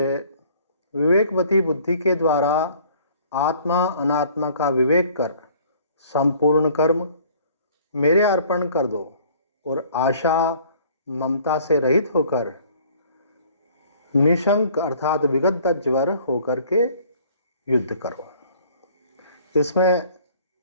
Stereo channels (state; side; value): inverted; both; correlation -0.55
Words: विवेकवती बुद्धि के द्वारा आत्मा अनात्मा का विवेक कर संपूर्ण कर्म मेरे अर्पण कर दो और आशा ममता से रहित होकर निशंक अर्थात विगत ज्वर होकर के युद्ध करो। इसमें